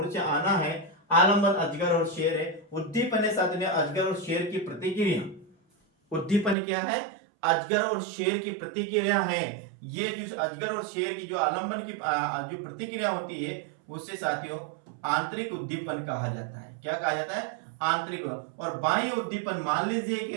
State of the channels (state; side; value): drops out; left; at 6.6 s